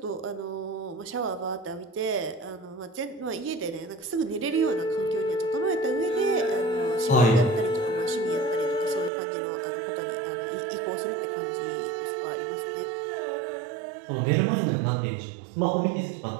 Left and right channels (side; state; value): left; drops out; at 9.1 s